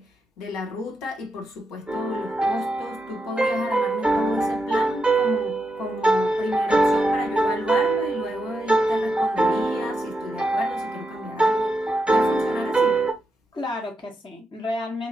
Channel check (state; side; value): normal; both; correlation 0.85